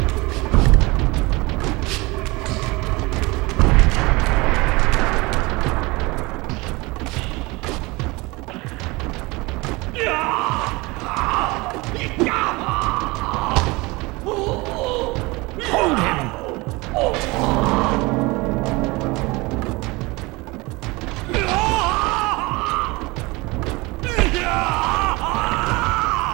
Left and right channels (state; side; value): quieter; left; 23.7 dB